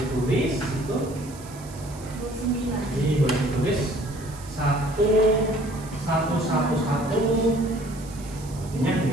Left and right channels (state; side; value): noise; right; hiss, 19 dB below the sound